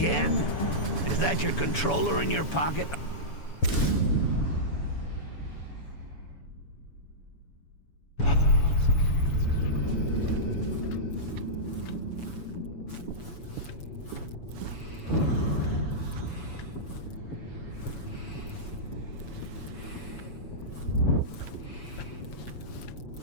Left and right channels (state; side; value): late; right; 7.0 ms